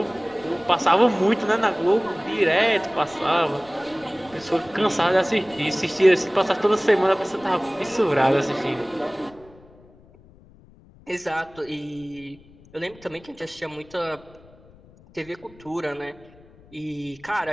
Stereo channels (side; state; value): left; noise; rumble, 25 dB below the sound